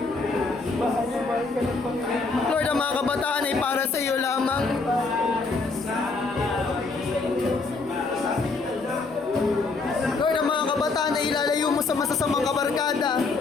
Lord, ang mga kabataan ay para sa iyo lamang. Lord, ang mga kabataan ay ilalayo mo sa masasamang kabarkada,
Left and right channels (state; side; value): quieter; right; 4.0 dB